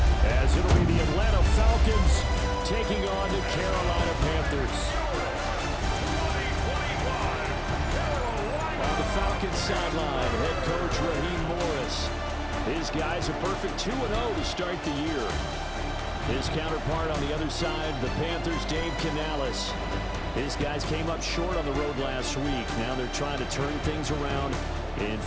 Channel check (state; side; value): identical; both; correlation 1.00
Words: as it'll be the Atlanta Falcons taking on the Carolina Panthers. On the Falcons sideline, head coach Raheem Morris. His guys a perfect 2-0 to start the year. His counterpart on the other side, the Panthers' Dave Canales. His guys came up short on the road last week. Now they're trying to turn things around in